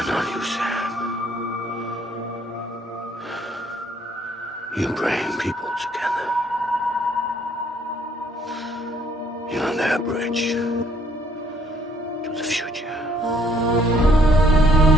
not you, Sam. You bring people together. You're their bridge to the future.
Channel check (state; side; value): normal; both; correlation 0.64